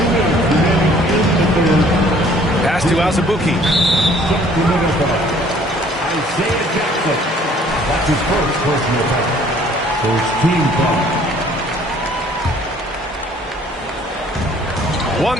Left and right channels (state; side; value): normal; both; correlation 0.57